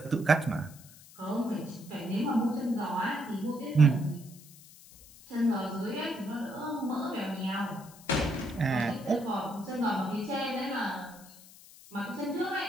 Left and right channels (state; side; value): noise; left; hiss, 21 dB below the sound